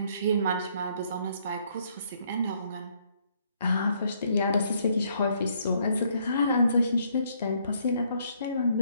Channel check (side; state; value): both; inverted; correlation -0.69